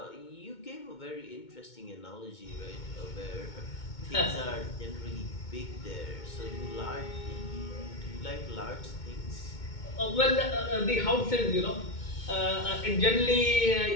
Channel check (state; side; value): late; right; 2.2 ms